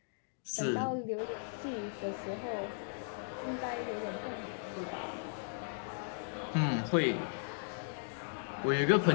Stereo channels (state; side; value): silent; right; digital silence